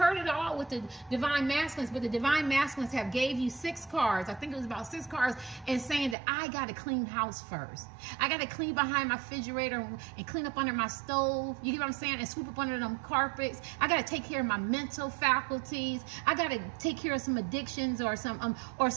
it all with the divine masculines, but the divine masculines have gave you 6 cards. I think it was about 6 cards, and saying that I got to clean house first. I got to clean behind my refrigerator and clean up under my stove. You get what I'm saying? And sweep up under them carpets. I got to take care of my mental faculties. I got to take care of some addictions, or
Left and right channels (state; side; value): drops out; left; at 6.2 s